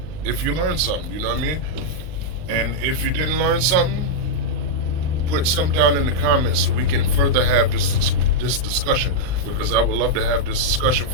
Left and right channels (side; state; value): left; late; 39 ms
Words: if you learned something, you know what I mean? And if you didn't learn something, put some down in the comments so we can further have this discussion, because I would love to have this discussion